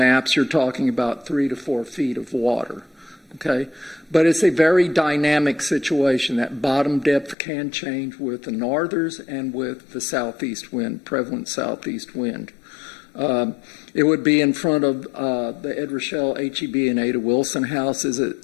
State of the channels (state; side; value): drops out; right; at 7.4 s